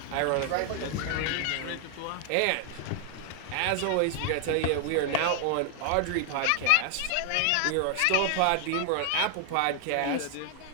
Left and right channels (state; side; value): different; both; correlation 0.00